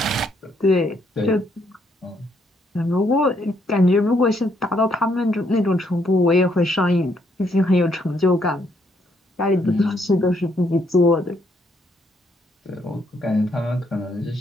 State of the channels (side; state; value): both; normal; correlation 0.72